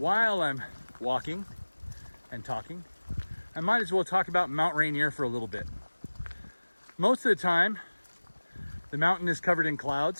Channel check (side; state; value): both; inverted; correlation -1.00